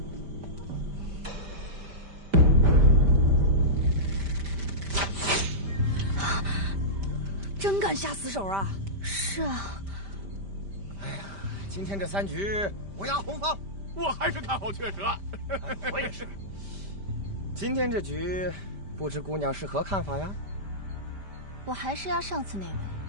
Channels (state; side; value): late; left; 5.1 ms